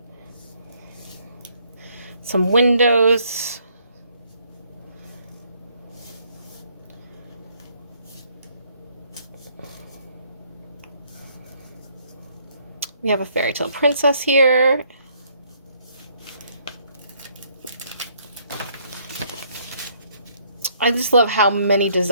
Some windows. We have a Fairytale princess here. I just love how many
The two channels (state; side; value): inverted; both; correlation -0.66